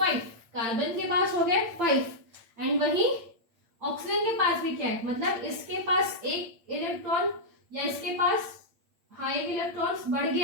कार्बन के पास हो गए 5 एंड वहीं ऑक्सीजन के पास भी क्या है, मतलब इसके पास एक इलेक्ट्रॉन या इसके पास एक इलेक्ट्रॉन बढ़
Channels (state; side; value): late; left; 8.8 ms